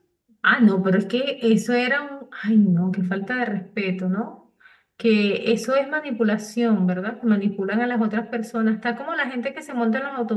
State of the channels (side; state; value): both; identical; correlation 1.00